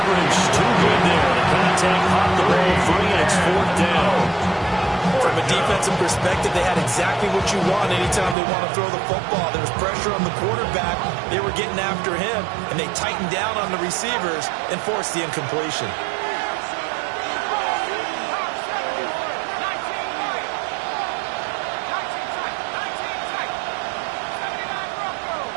too good there. The contact popped the ball free, and it's fourth down. From a defensive perspective, they had exactly what you want anytime they want to throw the football. There was pressure on the quarterback. They were getting after him, and they tightened down on the receivers and forced the incompletion.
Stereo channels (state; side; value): drops out; left; at 8.3 s